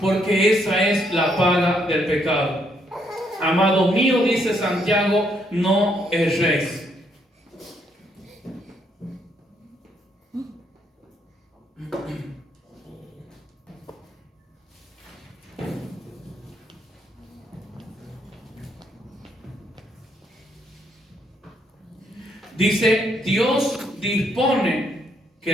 esa es la paga del pecado. Amado mío, dice Santiago, no erréis. Dice, Dios dispone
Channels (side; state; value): both; normal; correlation 0.73